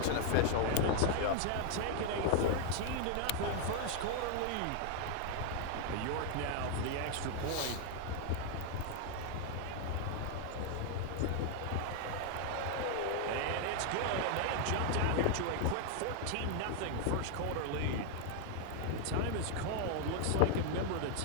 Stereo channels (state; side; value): different; both; correlation 0.00